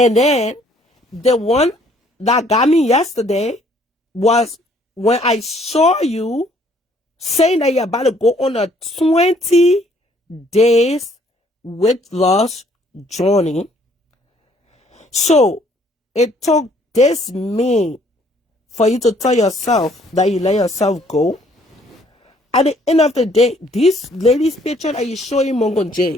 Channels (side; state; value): both; normal; correlation 0.63